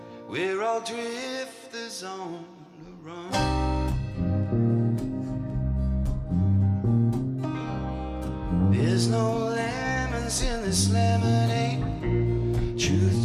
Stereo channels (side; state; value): both; identical; correlation 1.00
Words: We're all drifters on the run. There's no lemons in this lemonade.